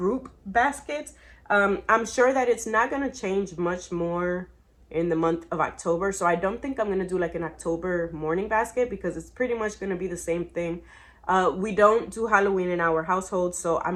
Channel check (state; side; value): identical; both; correlation 1.00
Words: basket. I'm sure that it's not going to change much more in the month of October. So I don't think I'm going to do like an October morning basket, because it's pretty much going to be the same thing. We don't do Halloween in our household, so